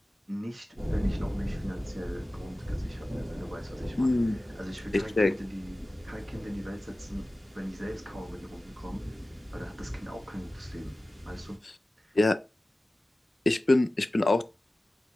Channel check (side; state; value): both; normal; correlation 0.97